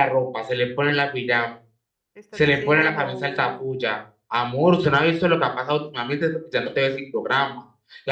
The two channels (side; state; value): both; identical; correlation 1.00